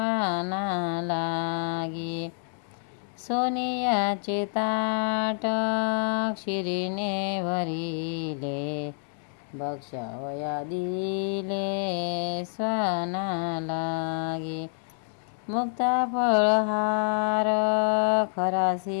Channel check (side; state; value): right; silent; 60 dB below the other